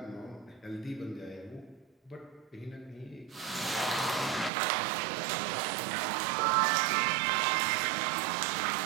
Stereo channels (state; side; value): drops out; left; at 4.5 s